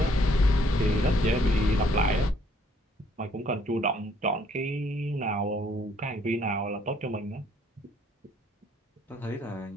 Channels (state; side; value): normal; both; correlation 0.65